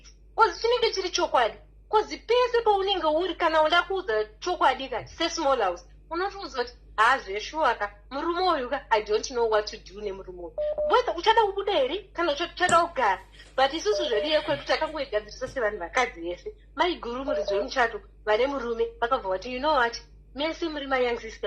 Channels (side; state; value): both; identical; correlation 1.00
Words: because chinenge chiri chokwadi because pese paunenge uri kana uda kuudza chokwadi kati sesmall house unotoudza kuti hazveshuwaka murume uyuka I don't know what to do nemurume uyu whether uchada kubuda here kana uchada kugara but isusu zvedu yekwedu takangoigadzirisa sevanhu vakadzi yese maiguru muridzi wemuchato vane murume vakabva vati you know what mese muri mayoung